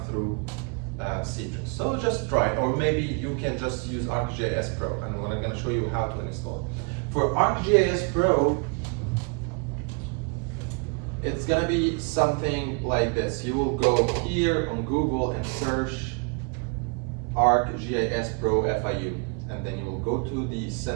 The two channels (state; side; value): quieter; left; 35.1 dB